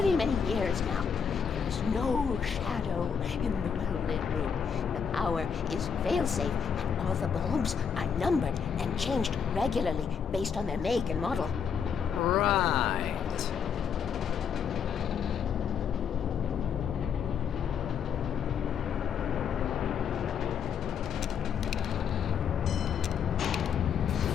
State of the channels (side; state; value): right; quieter; 7.1 dB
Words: many years now. There is no shadow in the well-lit room. The power is fail-safe, and all the bulbs are numbered and changed regularly based on their make and model. Right.